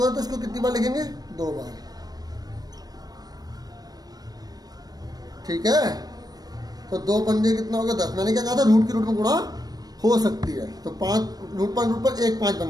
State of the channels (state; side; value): late; left; 0.19 ms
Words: है, तो इसको कितनी बार लिखेंगे 2 बार, ठीक है। तो 2 पंजे कितना होगा 10, मैंने क्या कहा था, रूट की रूट में गुणा हो सकती है, तो 5 √5 1 5